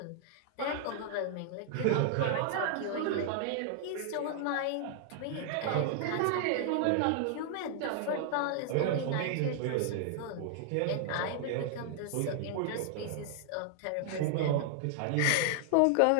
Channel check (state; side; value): different; both; correlation 0.00